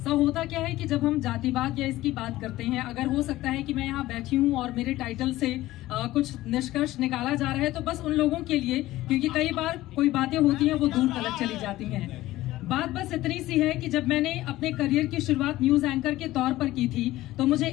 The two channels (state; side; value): quieter; right; 16.4 dB